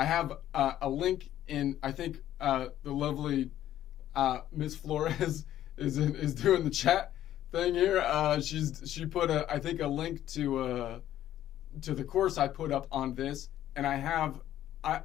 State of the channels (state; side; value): quieter; right; 12.3 dB